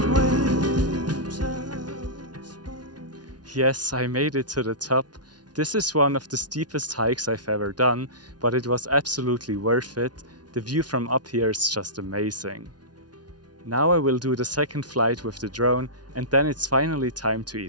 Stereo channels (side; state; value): left; late; 0.69 ms